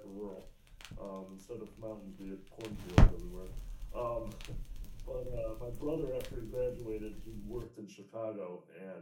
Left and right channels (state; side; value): identical; both; correlation 1.00